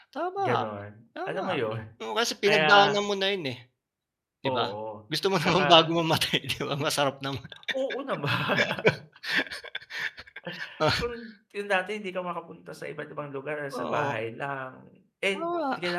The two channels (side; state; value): both; identical; correlation 1.00